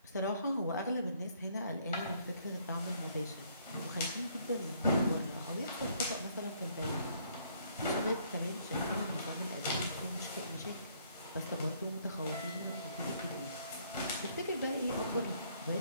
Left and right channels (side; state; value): both; inverted; correlation -0.66